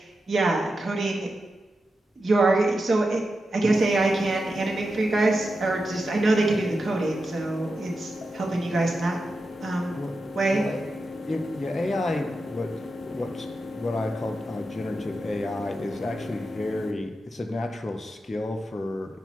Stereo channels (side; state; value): both; normal; correlation 0.89